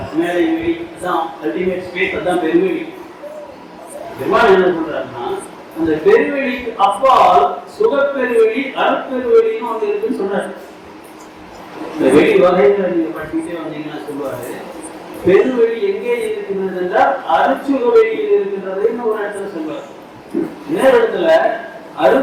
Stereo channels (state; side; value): identical; both; correlation 1.00